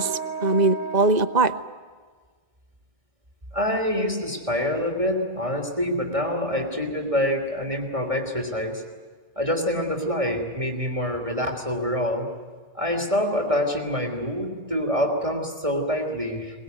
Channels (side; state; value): left; late; 1.6 ms